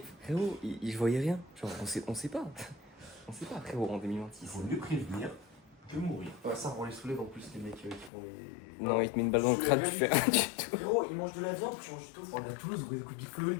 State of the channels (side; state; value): right; drops out; at 8.1 s